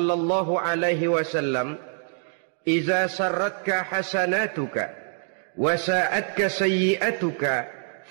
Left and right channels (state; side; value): silent; left; 59 dB below the other